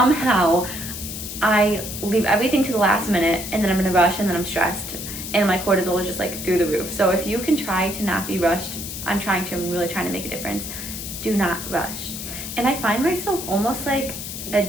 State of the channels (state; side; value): noise; left; hiss, 8 dB below the sound